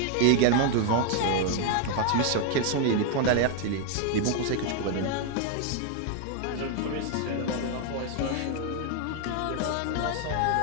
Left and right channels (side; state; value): both; different; correlation 0.01